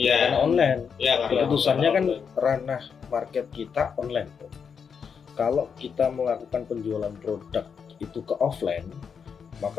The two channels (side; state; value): right; quieter; 6.5 dB